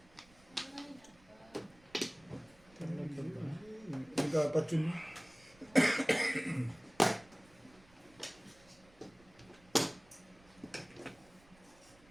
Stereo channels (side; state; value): right; noise; rumble, 27 dB below the sound